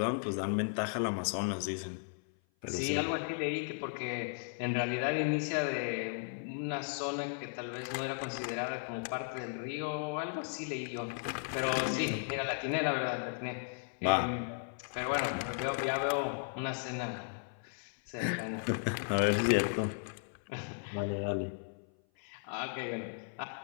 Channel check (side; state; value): right; silent; 54 dB below the other